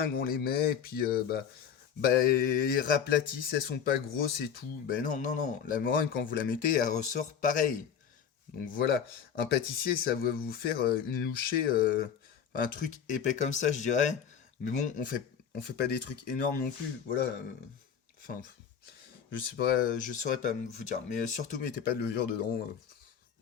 on les met et puis bah elles raplatissent, elles sont pas grosses et tout. Ben non non non, la meringue quand vous la mettez elle ressort pareil. Donc voilà, un pâtissier ça va vous faire une louchée, un truc épais comme ça je dirais. Mais bon on fait pas des trucs énormes non plus. Voilà. Enfin je saurais pas vous dire. Mais surtout mettez pas de levure dedans.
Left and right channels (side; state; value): right; quieter; 7.8 dB